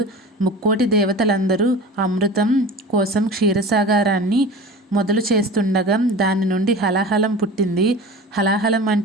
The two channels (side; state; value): both; normal; correlation 0.36